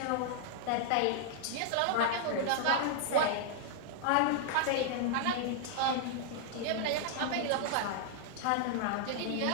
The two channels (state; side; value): different; both; correlation 0.00